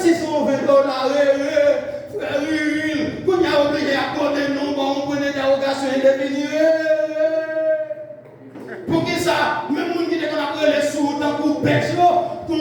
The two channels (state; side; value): identical; both; correlation 1.00